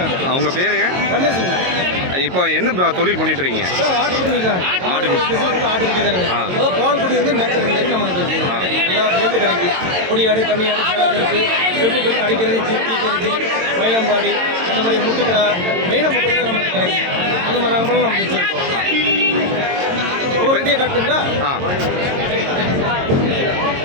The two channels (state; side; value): late; left; 22 ms